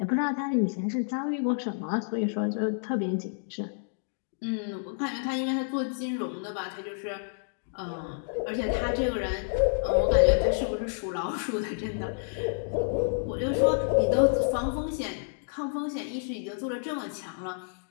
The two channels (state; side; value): silent; right; digital silence